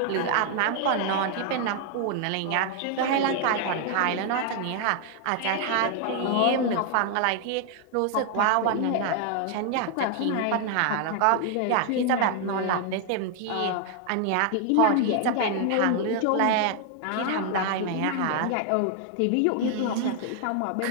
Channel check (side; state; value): both; different; correlation 0.00